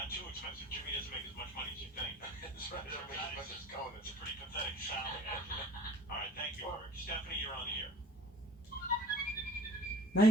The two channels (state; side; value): normal; both; correlation 0.47